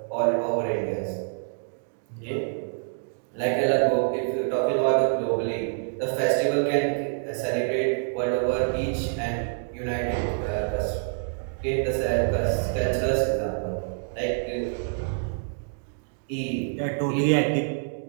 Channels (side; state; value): left; silent; digital silence